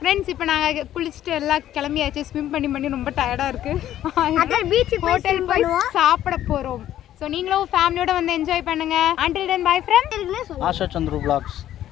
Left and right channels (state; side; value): quieter; right; 12.2 dB